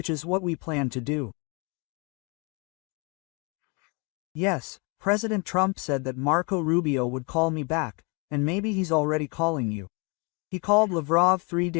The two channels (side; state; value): right; quieter; 31.7 dB